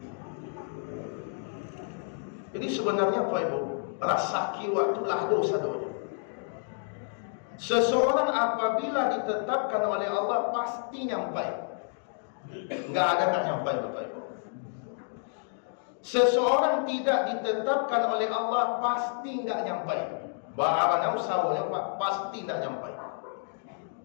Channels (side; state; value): right; silent; digital silence